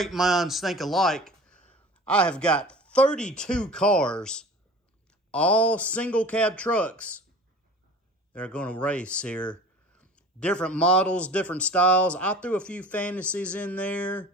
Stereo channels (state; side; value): normal; both; correlation 0.40